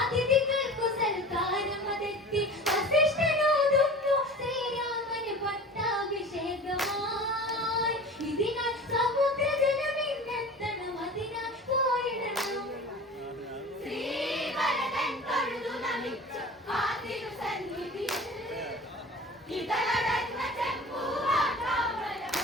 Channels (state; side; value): normal; both; correlation 0.38